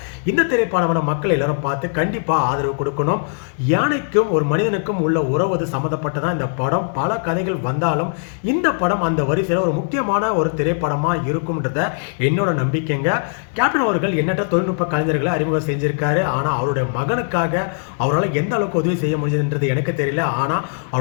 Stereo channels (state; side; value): silent; right; digital silence